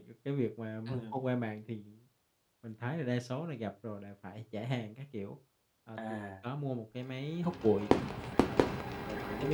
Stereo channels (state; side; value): identical; both; correlation 1.00